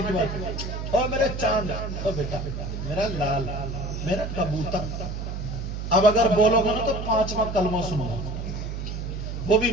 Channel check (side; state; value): right; noise; hum, 5 dB below the sound